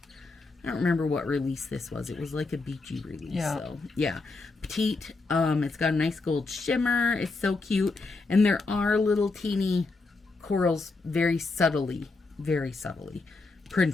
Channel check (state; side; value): quieter; right; 3.7 dB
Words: I don't remember what release this was. It was like a beachy release. Yeah. So, yeah. Petite. It's got a nice gold shimmer. It's so cute. And there are little teeny corals very subtly